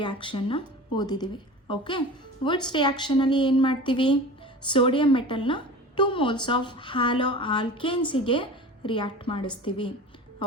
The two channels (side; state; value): both; normal; correlation 0.36